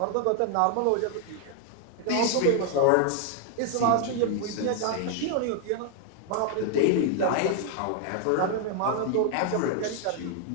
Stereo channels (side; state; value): both; different; correlation 0.00